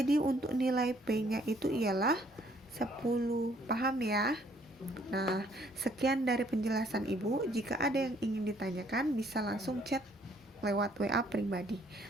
untuk nilai P-nya itu ialah 10. Paham ya? Nah, sekian dari penjelasan Ibu. Jika ada yang ingin ditanyakan bisa langsung chat lewat WA pribadi.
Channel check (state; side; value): normal; both; correlation 0.64